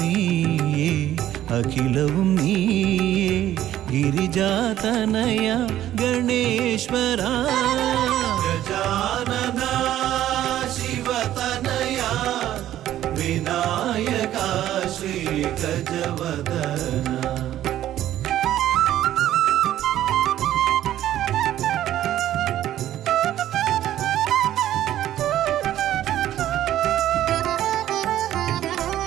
അഖിലവും നീയേ ഗിരിജാതനയ ഗണേശ്വര ഗജാനന ശിവതനയ വിനായക ശ്രീ ഗജവദന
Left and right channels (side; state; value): left; quieter; 12.6 dB